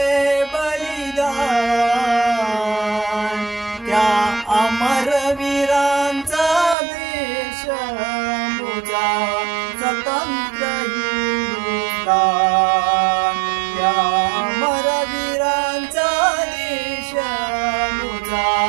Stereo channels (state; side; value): drops out; left; at 6.8 s